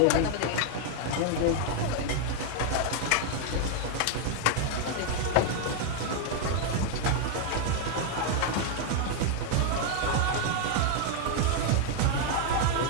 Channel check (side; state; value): both; different; correlation 0.00